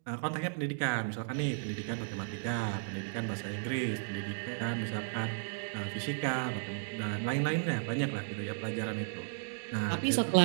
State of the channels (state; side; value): silent; left; digital silence